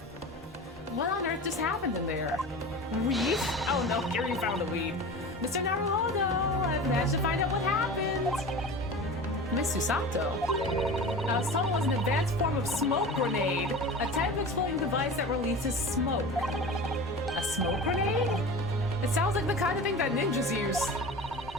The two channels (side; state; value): both; normal; correlation 0.33